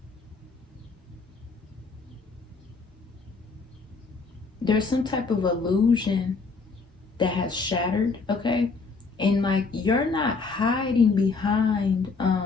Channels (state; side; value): quieter; right; 4.3 dB